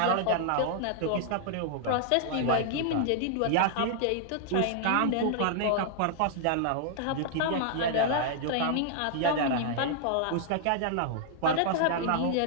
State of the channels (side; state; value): both; different; correlation -0.01